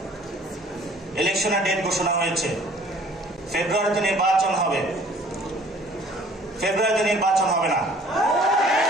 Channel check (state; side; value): normal; both; correlation 0.54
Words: ইলেকশনের ডেট ঘোষণা হয়েছে, ফেব্রুয়ারিতে নির্বাচন হবে, ফেব্রুয়ারিতে নির্বাচন হবে না।